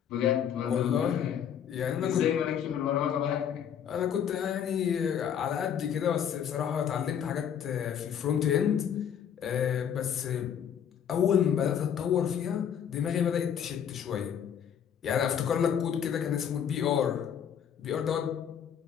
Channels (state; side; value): quieter; right; 8.6 dB